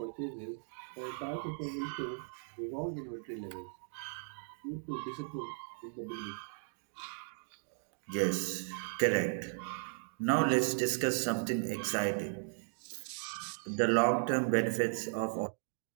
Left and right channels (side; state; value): left; silent; digital silence